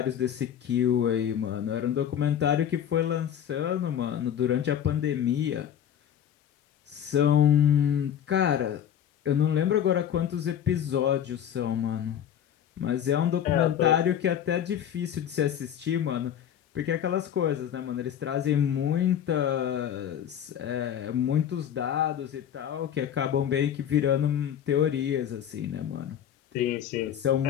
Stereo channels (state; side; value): quieter; right; 9.6 dB